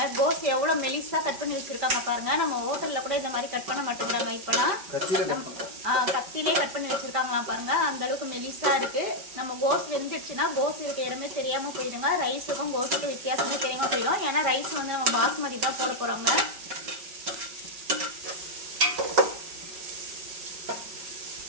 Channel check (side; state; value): left; late; 5.1 ms